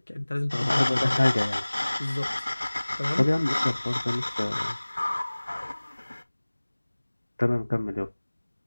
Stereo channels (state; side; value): inverted; both; correlation -1.00